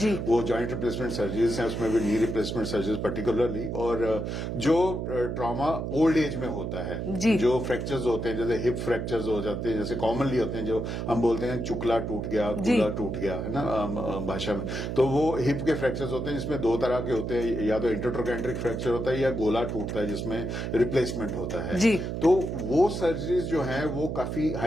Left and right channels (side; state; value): right; noise; hum, 3 dB below the sound